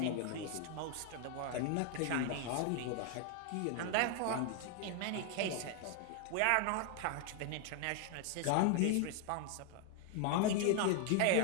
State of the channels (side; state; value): both; different; correlation 0.00